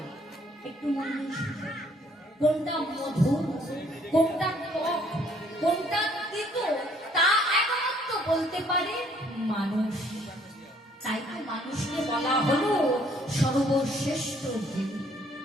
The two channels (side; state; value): both; normal; correlation 0.63